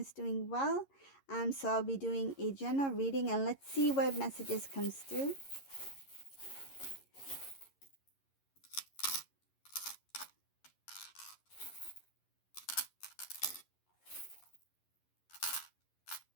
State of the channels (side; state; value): right; late; 11 ms